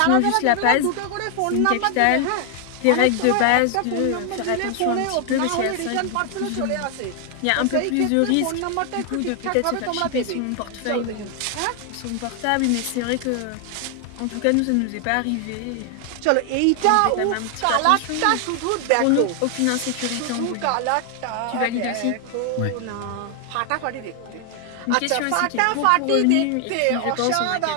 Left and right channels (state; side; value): different; both; correlation 0.00